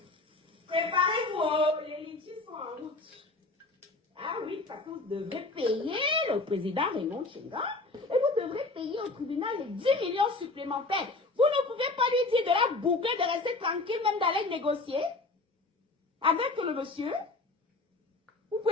Préparez-vous, les litchis sont en route. Ah oui, parce que vous devrez payer le président Raymond Tchenga et vous devrez payer au tribunal les 10 millions supplémentaires. Vous ne pouvez pas lui dire de la boucler, de rester tranquille, même d'aller négocier avec le monsieur. Vous ne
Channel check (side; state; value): right; quieter; 3.3 dB